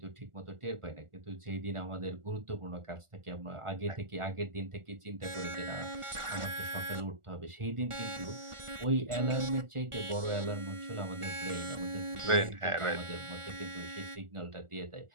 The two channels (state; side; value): late; left; 1.4 ms